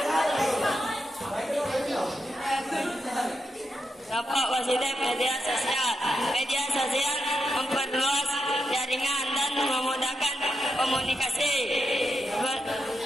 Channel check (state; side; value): normal; both; correlation 0.85